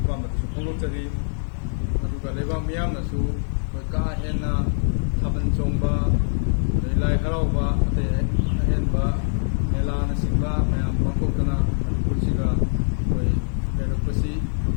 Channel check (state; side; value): silent; right; 63 dB below the other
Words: ꯐꯣꯡꯗꯣꯛꯆꯔꯤ꯫ ꯑꯗꯨꯒ ꯂꯩꯕꯥꯛ ꯃꯤꯌꯥꯝꯅꯁꯨ ꯑꯩꯈꯣꯏ ꯀꯥ ꯍꯦꯟꯅ ꯊꯥꯕꯜ ꯆꯣꯡꯕ, ꯑꯗꯩ ꯂꯥꯏ ꯍꯔꯥꯎꯕ, ꯑꯇꯩ ꯑꯍꯦꯟꯕ ꯃꯦꯂꯥꯅꯆꯤꯡꯕ ꯃꯌꯥꯝ ꯄꯥꯡꯊꯣꯛꯇꯅ ꯃꯅꯤꯄꯨꯔꯁꯤꯒ ꯑꯩꯈꯣꯏ ꯂꯩꯔꯛꯄꯁꯤ